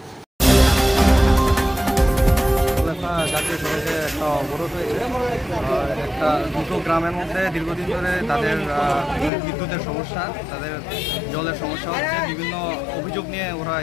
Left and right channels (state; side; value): drops out; right; at 9.3 s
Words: জাতীয় সড়কে একটা অবরোধ হয়েছে। একটা দুটো গ্রামের মধ্যে দীর্ঘদিন ধরে তাদের বিদ্যুতের সমস্যা, তাদের জলের সমস্যা হচ্ছে, বিভিন্ন অভিযোগ নিয়ে ওরা